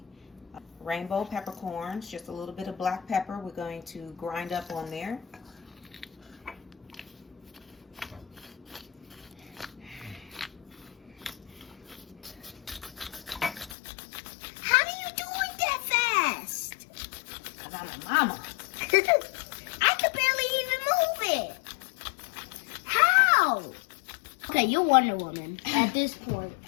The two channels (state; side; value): drops out; right; at 13.8 s